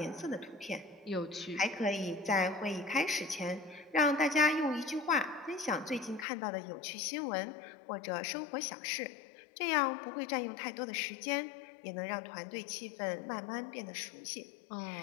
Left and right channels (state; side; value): drops out; right; at 6.2 s